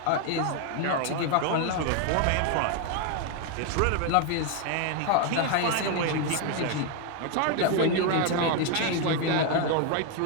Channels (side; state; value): both; different; correlation 0.01